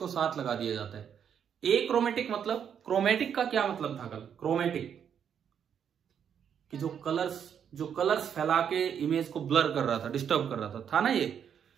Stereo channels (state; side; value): quieter; left; 8.2 dB